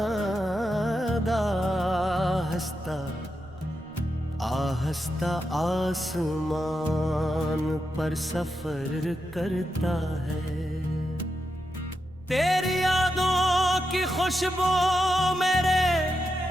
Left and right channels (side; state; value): right; noise; rumble, 21 dB below the sound